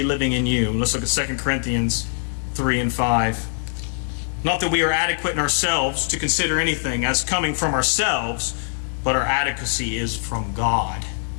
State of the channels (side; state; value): right; silent; 56 dB below the other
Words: living in you. Let's look at 2 Corinthians 3 and 5. Not that we are adequate in ourselves to consider anything as coming from ourselves, but our adequacy is from God.